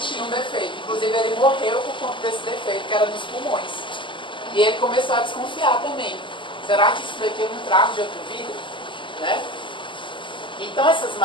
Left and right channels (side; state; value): right; late; 0.24 ms